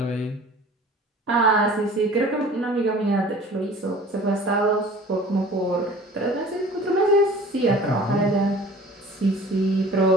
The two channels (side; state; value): both; normal; correlation 0.45